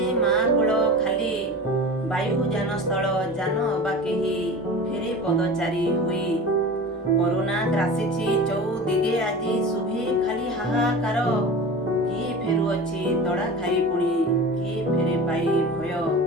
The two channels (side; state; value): both; normal; correlation 0.34